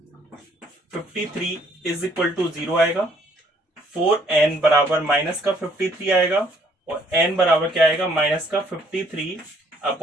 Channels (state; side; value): normal; both; correlation 0.64